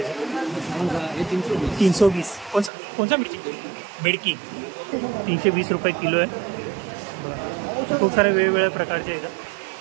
है 320. कौन सा मिर्ची बेडकी 320 रुपये किलो है. खूप सारे वेगवेगळ्या प्रकारचे आहेत.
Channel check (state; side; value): drops out; left; at 2.7 s